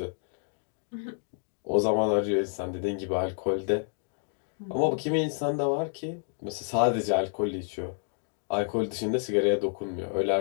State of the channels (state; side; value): silent; right; digital silence